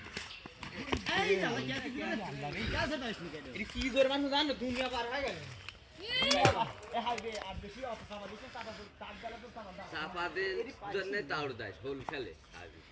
এই যা कैसे था इसमें এটা কি জোর মানুষ জানো দুনিয়া পার হয়ে গেল ए हाई बे আর বেশি অফিসার দিছে তার গেলে তো সামান দাও চাপাদের জন্য তাউর দেয় হোল খেলে হাবি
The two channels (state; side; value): identical; both; correlation 1.00